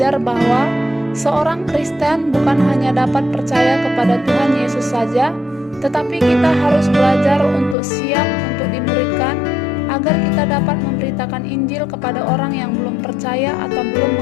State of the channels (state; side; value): drops out; right; at 7.8 s